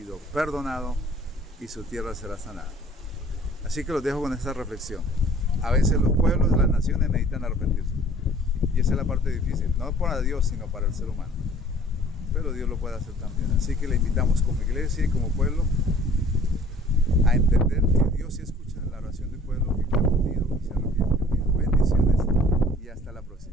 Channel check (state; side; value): normal; both; correlation 0.53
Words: perdonado, y su tierra será sanada. Así que los dejo con esta reflexión. A veces los pueblos, las naciones necesitan arrepentirse. Y esa es la parte difícil, no para Dios, sino para el ser humano. Pero Dios lo puede hacer también. Así que le invitamos como iglesia y como pueblo a entender que Dios sí escucha la oración del pueblo que clama unido y se arrepiente unido. Bendiciones y hasta la